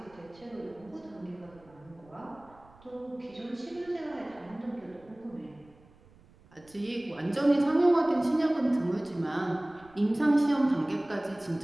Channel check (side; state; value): right; noise; rumble, 27 dB below the sound